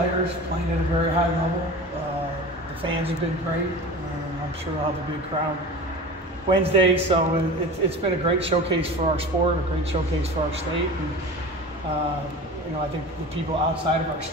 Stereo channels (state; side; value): normal; both; correlation 0.34